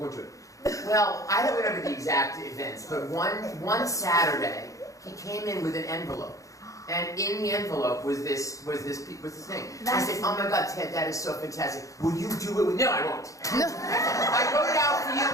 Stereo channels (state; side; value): late; right; 0.16 ms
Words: do it. Well, I don't remember the exact events, but one Saturday, he came in with an envelope. And in the envelope was this thing. I said, oh my God, Ted, that is so fantastic. Will you do it with, no, I won't. I wrote it out for you,